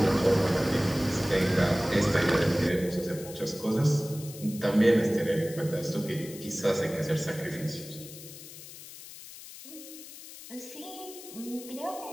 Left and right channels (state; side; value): noise; left; hiss, 15 dB below the sound